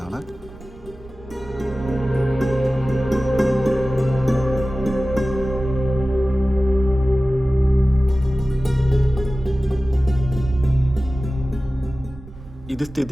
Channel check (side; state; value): right; noise; rumble, 21 dB below the sound